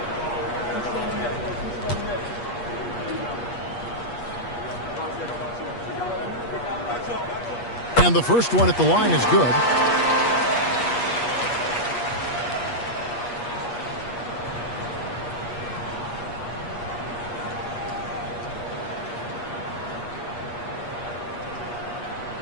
And the first one at the line is good.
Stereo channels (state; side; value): late; right; 8.4 ms